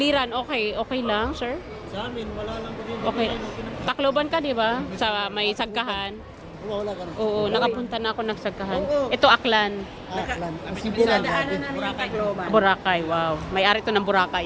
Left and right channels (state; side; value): identical; both; correlation 1.00